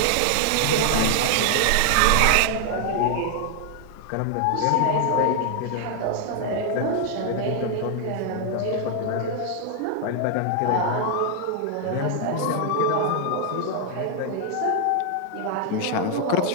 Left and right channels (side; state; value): both; different; correlation 0.00